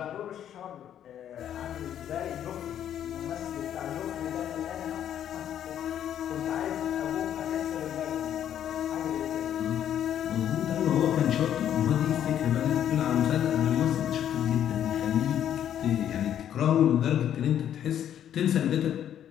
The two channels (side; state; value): right; quieter; 10.2 dB